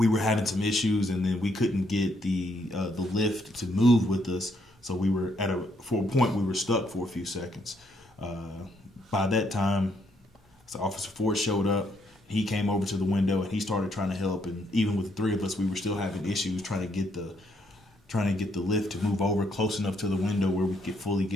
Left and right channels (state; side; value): normal; both; correlation 0.73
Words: were having some issues, and then we couldn't get the lift to move with us. So we were for a point we were stuck for a few seconds. By that time, so Officer Ford showed up. He came over to the window and he started trying to help. And even with the three of us, we were still having issues trying to get the lift to move over close enough to the window where we could fully